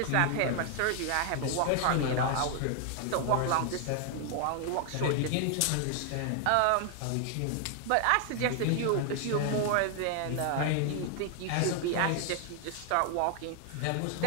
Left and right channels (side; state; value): both; different; correlation 0.00